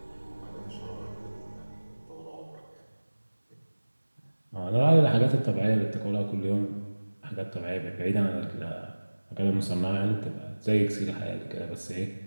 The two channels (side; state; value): both; inverted; correlation -1.00